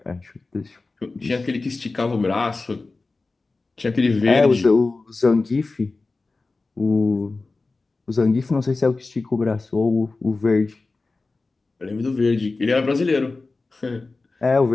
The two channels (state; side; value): quieter; right; 3.6 dB